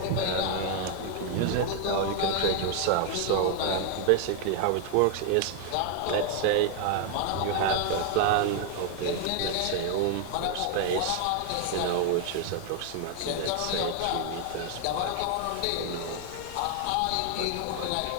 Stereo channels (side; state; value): both; different; correlation 0.00